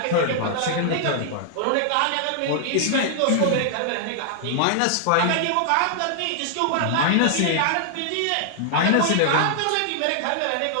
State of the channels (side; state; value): both; different; correlation -0.01